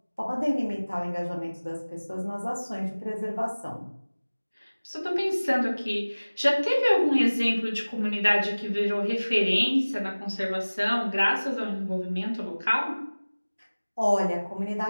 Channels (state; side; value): inverted; both; correlation -1.00